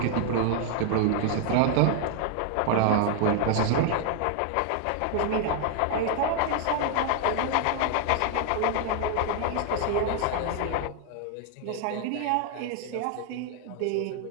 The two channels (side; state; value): both; different; correlation 0.00